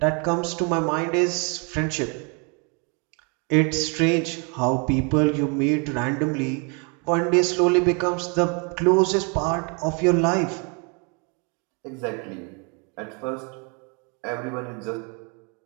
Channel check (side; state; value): left; quieter; 34.5 dB